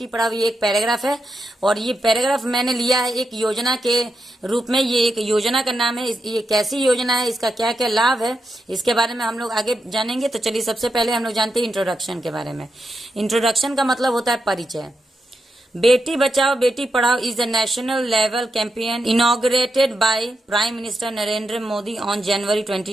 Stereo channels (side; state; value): both; normal; correlation 0.86